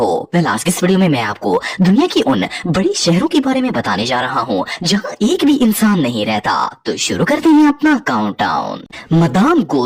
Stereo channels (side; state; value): both; identical; correlation 1.00